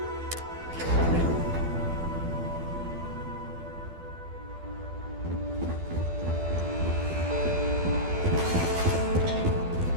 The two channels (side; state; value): left; late; 12 ms